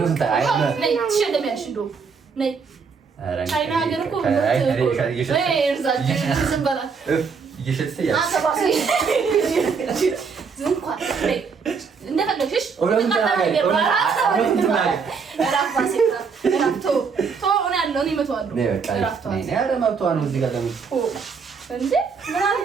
ትሸለሚያለሽ። እንደውም ነይ ቻይና ሀገር እኮ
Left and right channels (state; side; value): quieter; left; 5.5 dB